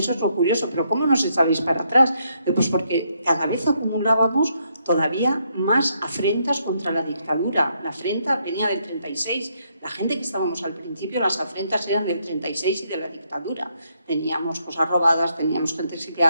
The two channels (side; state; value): both; inverted; correlation -0.75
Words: es lo curioso. Pero ¿cómo nos echáis para atrás? Pues porque cada vez acumulábamos todavía más afrentas contra la dictadura. La afrenta venía del 36. La gente que estábamos al principio, las afrentas eran del 36 y de la dictadura. Teníamos cosas robadas, teníamos gente